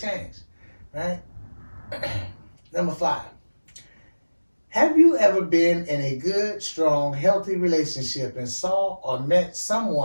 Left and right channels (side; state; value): both; inverted; correlation -1.00